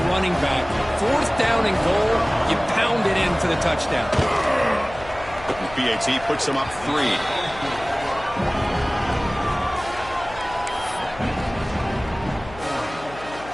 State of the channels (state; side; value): noise; left; hum, 17 dB below the sound